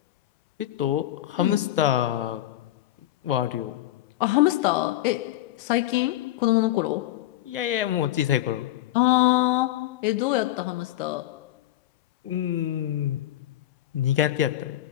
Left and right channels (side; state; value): right; quieter; 14.3 dB